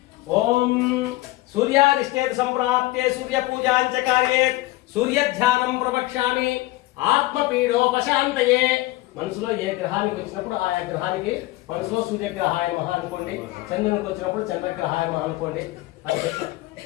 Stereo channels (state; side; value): quieter; right; 18.5 dB